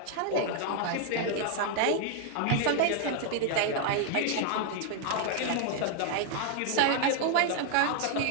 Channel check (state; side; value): different; both; correlation 0.00